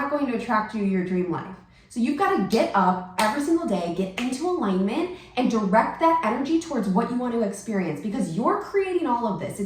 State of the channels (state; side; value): identical; both; correlation 1.00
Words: going to attract you to your dream life. So you've got to get up every single day, get into alignment, and direct that energy towards what you want to experience because you're creating all of this.